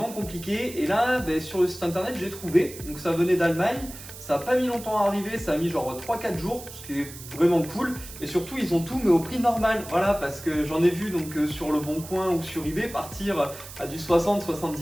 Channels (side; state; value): right; noise; hiss, 14 dB below the sound